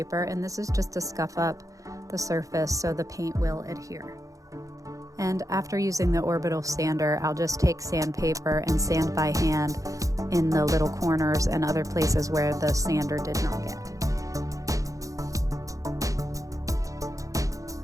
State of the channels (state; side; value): late; left; 0.16 ms